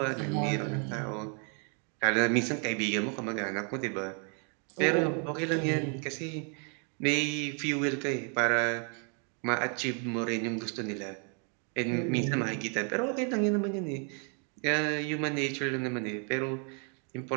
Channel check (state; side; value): quieter; left; 39.6 dB